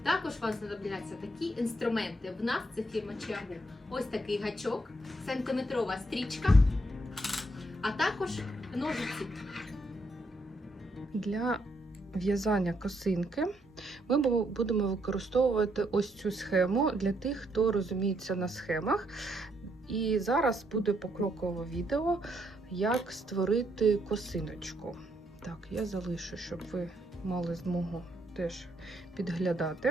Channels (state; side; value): normal; both; correlation 0.74